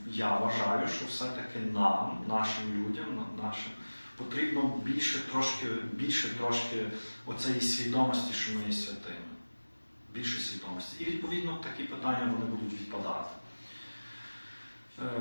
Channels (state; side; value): inverted; both; correlation -1.00